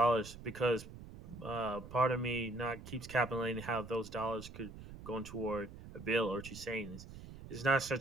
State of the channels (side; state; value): right; noise; rumble, 14 dB below the sound